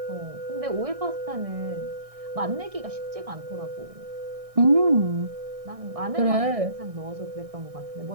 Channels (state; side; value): late; left; 1.6 ms